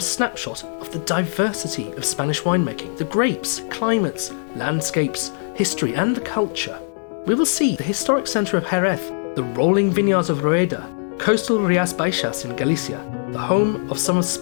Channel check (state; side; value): silent; right; digital silence